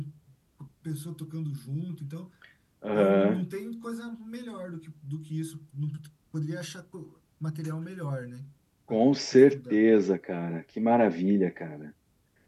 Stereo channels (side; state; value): both; identical; correlation 1.00